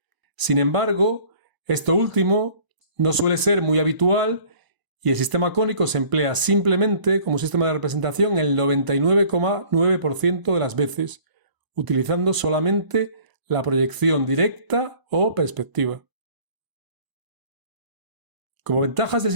Sin embargo, esto último no suele ser muy habitual y el sistema cónico se emplea simplemente como sistema de representación el 99,9% de las veces, utilizando solamente la proyección directa o perspectiva. Como ventajas del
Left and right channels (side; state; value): left; late; 1.0 ms